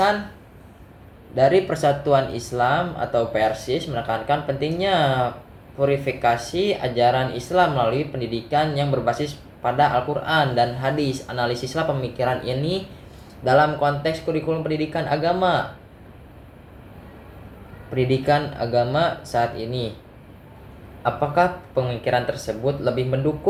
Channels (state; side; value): identical; both; correlation 1.00